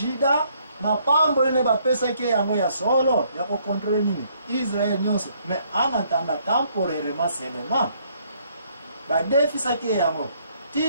mapambo ne ba pesa ke yango ya solo ya ko contrôler nini Israël nyonso mais en attendant temporairement seulement ba defisa ke yango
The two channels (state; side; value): inverted; both; correlation -0.67